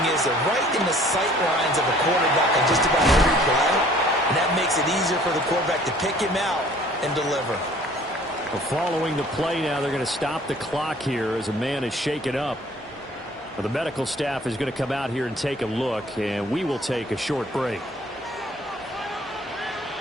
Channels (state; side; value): normal; both; correlation 0.54